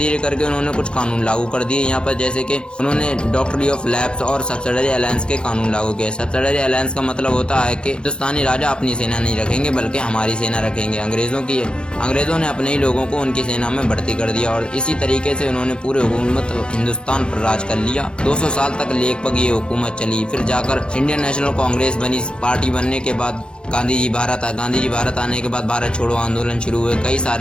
करके उन्होंने कुछ कानून लागू कर दिए यहाँ पर, जैसे कि उन्होंने डॉक्ट्री ऑफ लैप्स और सब्सिडरी अलायंस के कानून लागू किए। सब्सिडरी अलायंस का मतलब होता है कि हिंदुस्तानी राजा अपनी सेना नहीं रखेंगे बल्कि हमारी सेना रखेंगे। अंग्रेजों ने अपने ही लोगों को उनकी सेना में भर्ती कर दिया, और इसी तरीके से उन्होंने पूरे हुकूमत हिंदुस्तान पर राज कर लिया। 200 साल तक लगभग ये हुकूमत चली। फिर जाकर इंडियन नेशनल कांग्रेस बनी। पार्टी बनने के बाद गांधी जी भारत आने के बाद भारत छोड़ो आंदोलन शुरू हुए, कई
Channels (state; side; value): late; right; 0.052 ms